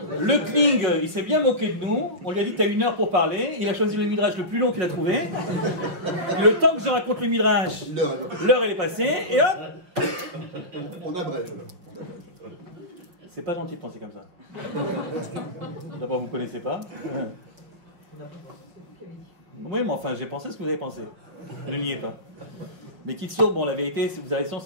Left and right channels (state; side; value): late; left; 5.6 ms